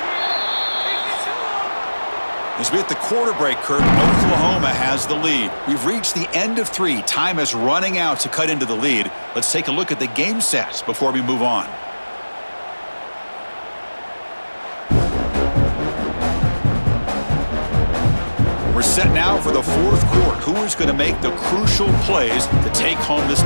As we hit the quarter break, Kurt, Oklahoma has the lead. We've reached the end of 3. Time is running out to cut into the lead. Let's take a look at the game stats before we move on. We're set now for the 4th quarter. Who is going to make the crucial plays to take home this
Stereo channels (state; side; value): inverted; both; correlation -1.00